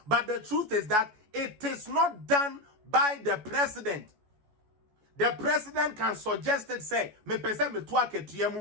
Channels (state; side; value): late; left; 14 ms